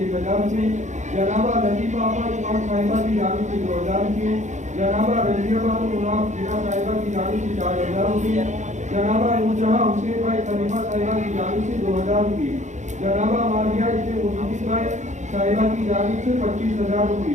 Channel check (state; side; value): late; left; 0.35 ms